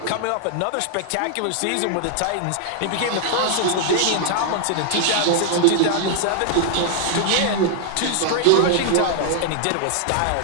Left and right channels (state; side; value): different; both; correlation 0.00